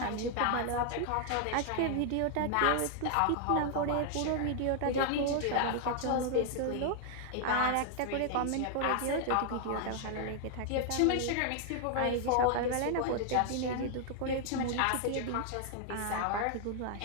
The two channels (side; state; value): both; different; correlation 0.00